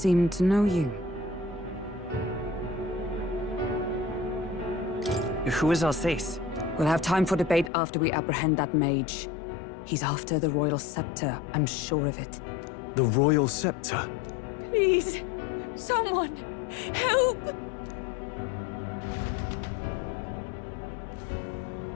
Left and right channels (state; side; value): drops out; right; at 7.7 s